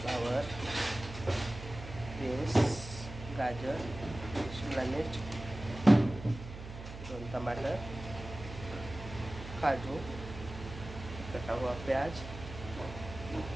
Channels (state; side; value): noise; right; hum, 11 dB below the sound